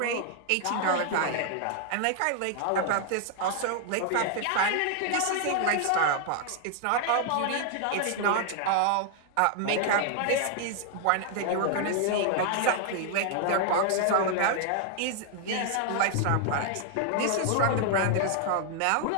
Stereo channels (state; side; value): different; both; correlation 0.00